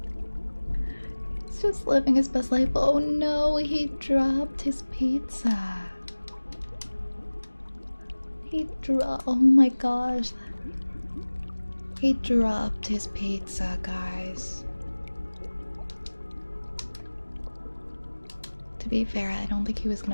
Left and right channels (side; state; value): both; inverted; correlation -1.00